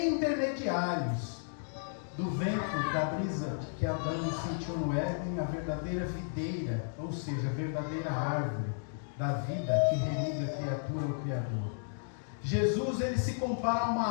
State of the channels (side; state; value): right; silent; digital silence